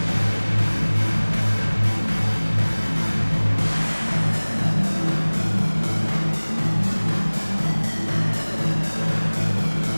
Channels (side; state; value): both; inverted; correlation -1.00